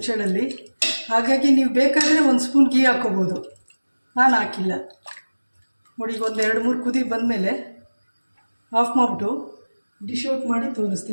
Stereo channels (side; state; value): both; inverted; correlation -1.00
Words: ಹಾಗಾಗಿ ನೀವು ಬೇಕಾದರೆ 1 ಸ್ಪೂನ್ ಗೀ ಹಾಕ್ಕೋಬೋದು, ನಾನು ಹಾಕಿಲ್ಲ. ನೋಡಿ ಈಗ ಒಂದು 2-3 ಕುದಿ ಬಂದಮೇಲೆ ಆಫ್ ಮಾಡಿಬಿಟ್ಟು ಡಿಶ್ ಔಟ್ ಮಾಡಿ